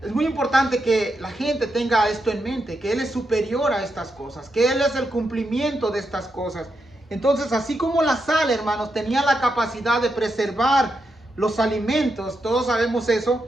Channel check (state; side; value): normal; both; correlation 0.84